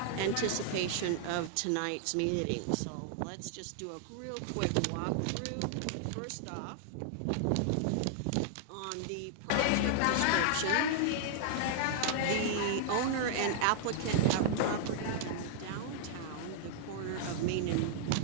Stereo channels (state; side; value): different; both; correlation -0.01